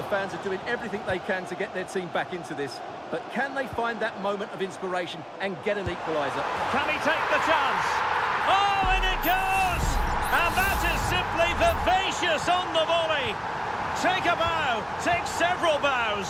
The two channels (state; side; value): identical; both; correlation 1.00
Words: fans are doing everything they can to get their team back into this. But can they find that moment of inspiration and get an equaliser? Can he take the chance? Oh, and it goes! And that is simply vivacious on the volley. Take a bow, take several bows.